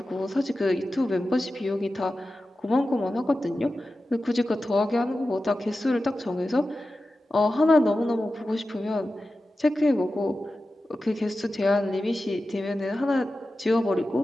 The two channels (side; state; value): both; normal; correlation 0.93